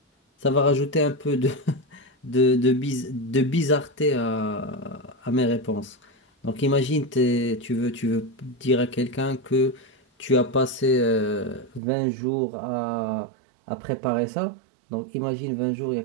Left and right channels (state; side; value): drops out; left; at 11.8 s